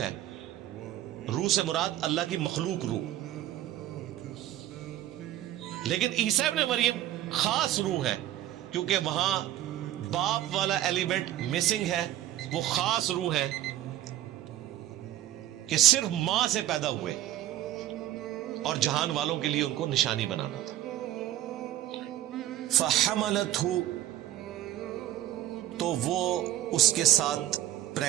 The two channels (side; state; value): left; quieter; 13.1 dB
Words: ہے، روح سے مراد اللہ کی مخلوق روح، لیکن عیسیٰ ابن مریم خاص روح ہے کیونکہ وہاں باپ والا ایلیمنٹ مسنگ ہے۔ وہ خاص روح ہے کہ صرف ماں سے پیدا ہوئے اور جہان والوں کے لیے ان کو نشانی بنانا تھا۔ فحملتہ، تو وہ اس کے ساتھ